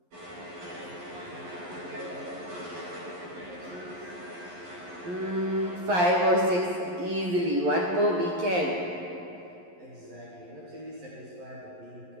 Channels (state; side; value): late; left; 11 ms